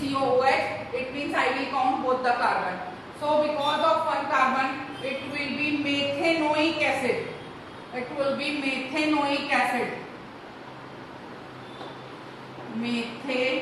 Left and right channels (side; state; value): both; identical; correlation 1.00